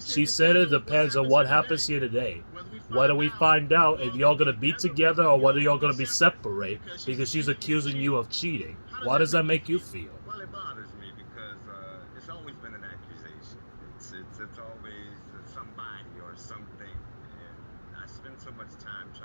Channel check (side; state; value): both; inverted; correlation -1.00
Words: She said it depends on what happens here today. Whether we find out if y'all gonna be together or whether y'all gonna be separate, because she's accusing you of cheating. Why does that make you feel? Well, it bothers me because it's always been an accusation. It's always somebody or something, and I spend so much time